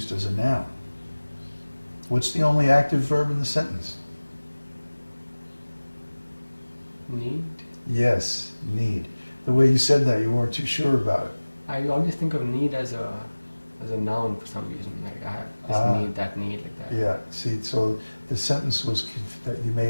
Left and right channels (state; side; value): inverted; both; correlation -1.00